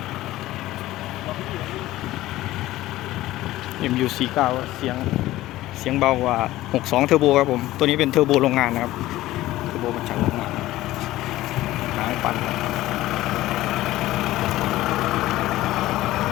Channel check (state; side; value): quieter; right; 16.1 dB